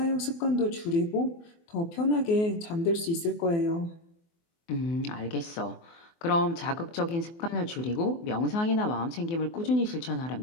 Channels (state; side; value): late; right; 24 ms